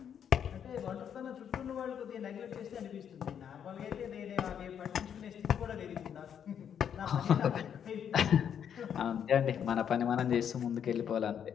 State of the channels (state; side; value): quieter; right; 8.5 dB